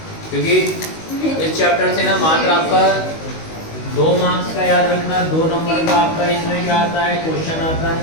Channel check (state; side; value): late; right; 19 ms